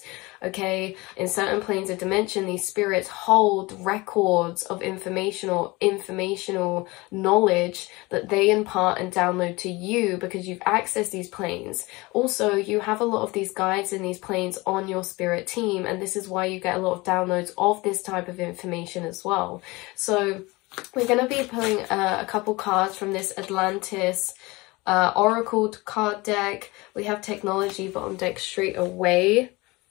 okay? In certain planes of dimension, these spirits hold records of informational knowledge that they impart and download to you because you've accessed these planes. Also, you have a lot of these guides in these planes on your spirit team, and this is why you get a lot of downloads of this type of information as well. So we're going to be pulling a couple cards from this Atlantis Oracle card deck. We have technology bottom deck straight away,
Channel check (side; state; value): right; quieter; 23.1 dB